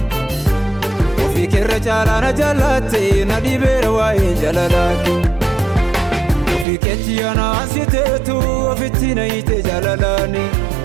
Ofii keerra caalaa na jaalatte na dhibeera waa'ee jaalalaa kee Ofii keetti yanaasiteetu ofitti na hiite jaalalaani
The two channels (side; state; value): left; drops out; at 6.7 s